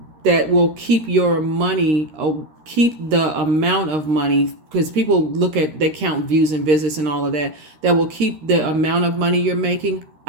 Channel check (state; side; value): late; left; 13 ms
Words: will keep your money, keep the amount of money, because people they count views and visits and all of that. That will keep the amount of money you're making